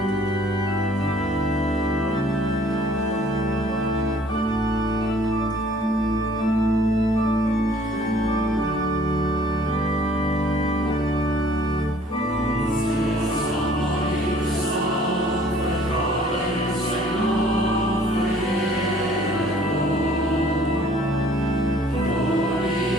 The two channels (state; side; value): normal; both; correlation 0.57